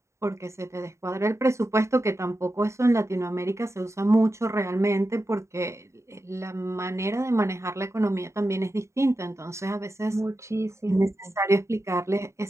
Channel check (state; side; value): late; left; 0.14 ms